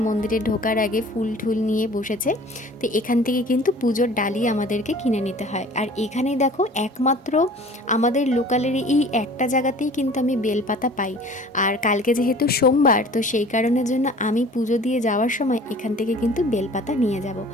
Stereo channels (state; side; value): normal; both; correlation 0.46